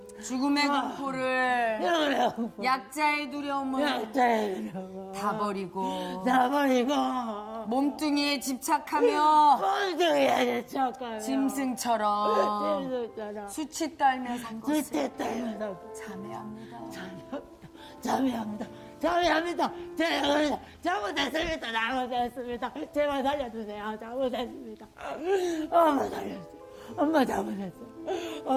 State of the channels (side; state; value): both; identical; correlation 1.00